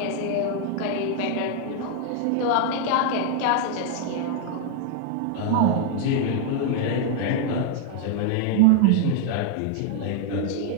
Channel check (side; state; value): both; different; correlation 0.00